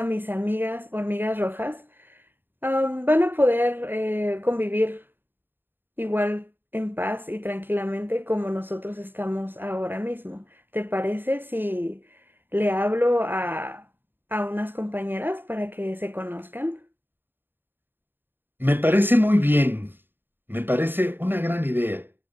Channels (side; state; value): left; late; 0.097 ms